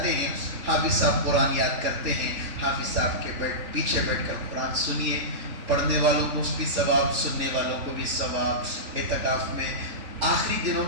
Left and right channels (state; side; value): late; left; 3.5 ms